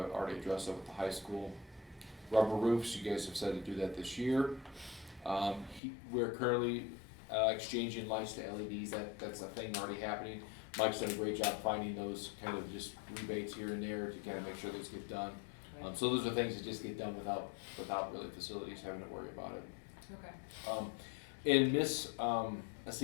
already addressed that with the high school. Rubber roofs, you guys have said to do that this year. We're currently exchanging lights to LEDs, that's a thing already happening. Mike's done a great job finding those kind of just rebates here and there to kind of make sure those get done. So those are things that just get done without really facilities having to worry about it. okay. In Miss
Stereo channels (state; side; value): drops out; right; at 5.8 s